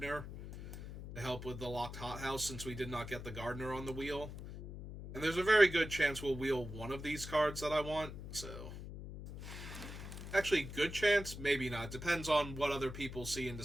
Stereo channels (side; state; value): left; noise; hum, 10 dB below the sound